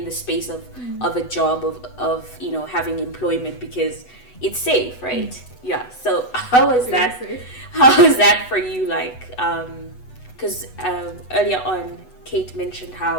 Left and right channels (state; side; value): late; right; 8.0 ms